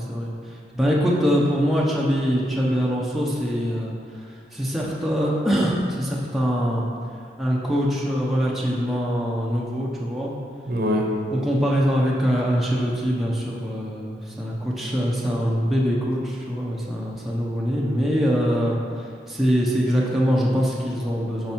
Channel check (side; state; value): both; normal; correlation 0.84